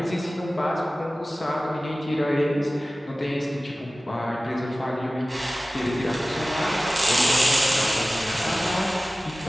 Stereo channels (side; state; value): both; normal; correlation 0.97